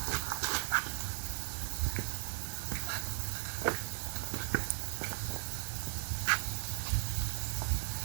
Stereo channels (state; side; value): silent; left; 53 dB below the other